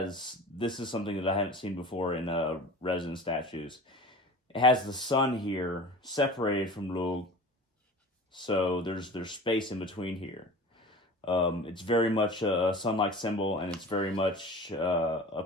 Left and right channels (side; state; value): both; normal; correlation 0.37